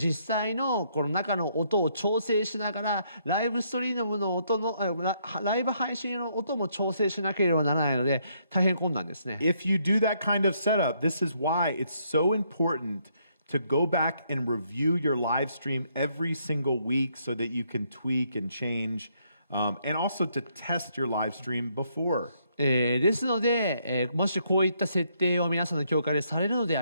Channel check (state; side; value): inverted; both; correlation -0.72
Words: 際のこの中の音を調整しながらライブストリームの音のライブ配信の音も調整しなければならないので大変困難ですね。If you do that kind of setup, this is why it's so important to go back and review your live stream every single week so that you can tweak and change, and also to test your live stream before. ですので、もしこういった設定を皆さんの教会でされるので